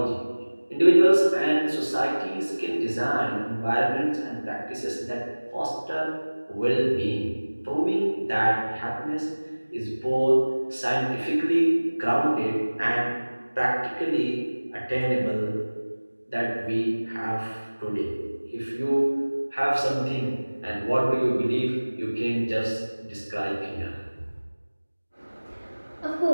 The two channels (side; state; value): both; inverted; correlation -1.00